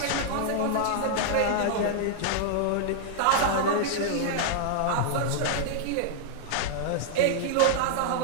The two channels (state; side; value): different; both; correlation -0.01